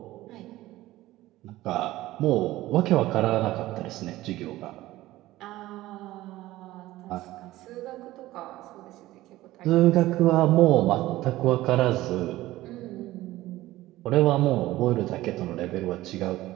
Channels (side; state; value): left; quieter; 16.6 dB